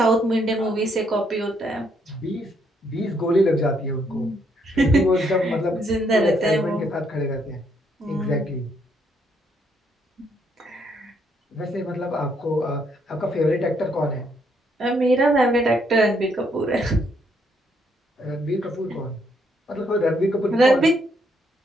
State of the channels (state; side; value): normal; both; correlation 0.72